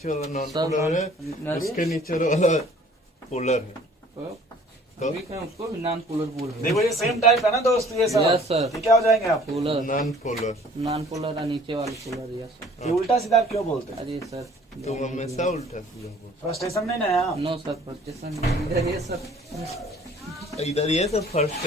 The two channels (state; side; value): normal; both; correlation 0.54